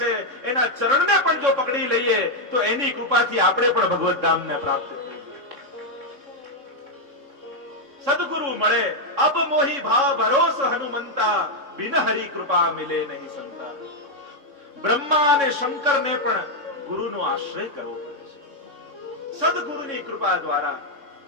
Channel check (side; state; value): left; late; 3.6 ms